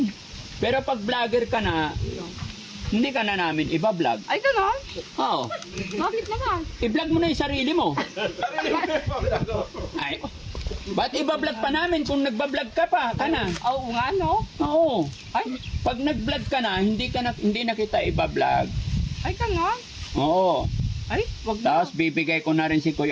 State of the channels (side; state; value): both; identical; correlation 1.00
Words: Pero pag vlogger ka na, hindi ka na namin iba-vlog. Ay, gano'n? Oo. Bakit naman? I-vlog mo na yung sarili mo. Ay, ba't iba-vlog pa namin kung nagba-vlog ka pa? Ka na. Oo nga, no? Oo. Ay, Pag nag-vlog ka na, hindi na kita iba-vlog. ay, gano'n? Oo. Ay, wag na. Tapos bibigay ko na rin si